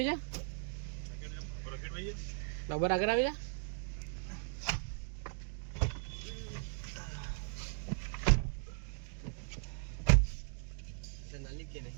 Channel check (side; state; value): left; silent; digital silence